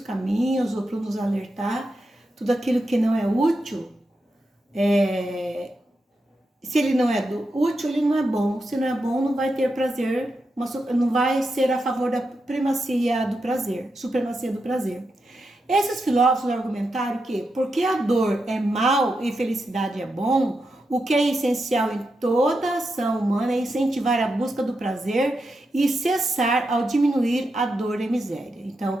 ou para nos alertar tudo aquilo que não é útil. Se ele não é útil, ele não é bom. Se não é bom, não vai ter prazer, não vai ser a favor da supremacia do prazer. Esses filósofos argumentaram que, porque a dor é mal e felicidade é bom, o que é essencial em toda ação humana é incentivar a busca do prazer e cessar ao diminuir a dor e a miséria.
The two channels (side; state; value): both; normal; correlation 0.87